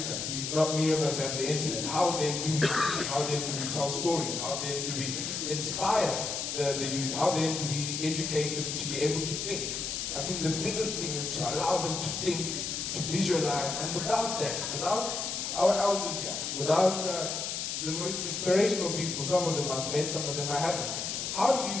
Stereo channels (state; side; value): noise; left; hiss, 3 dB below the sound